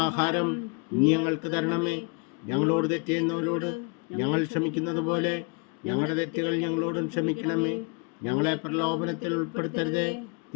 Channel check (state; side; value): quieter; right; 31.3 dB